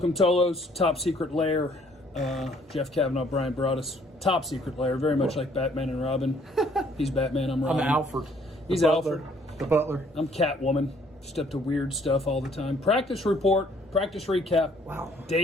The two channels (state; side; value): normal; both; correlation 0.62